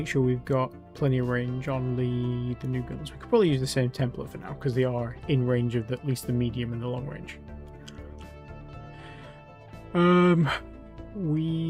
sure we've got plenty of range on the new guns. We could probably use the same template for now because they are in range of at least the medium and the long range.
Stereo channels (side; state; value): both; identical; correlation 1.00